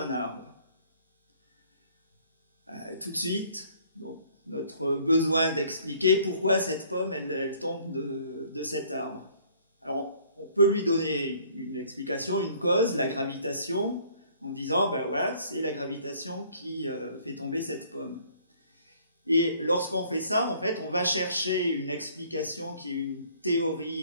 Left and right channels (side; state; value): both; inverted; correlation -0.59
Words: arbre. Tout de suite, donc, notre besoin d'expliquer pourquoi cette pomme, elle tombe de cet arbre. Alors, on peut lui donner une explication, une cause, la gravitation, en disant, ben voilà, c'est la gravitation qui fait tomber cette pomme. Et lorsqu'on fait ça, en fait, on va chercher une explication qui est une